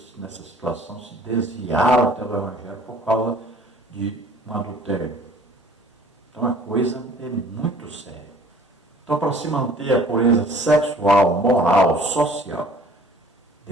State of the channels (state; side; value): normal; both; correlation 0.52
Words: nessa situação, se desviaram até do Evangelho por causa de um adultério. Então a coisa é muito séria. Então, para se manter a pureza sexual, moral, social,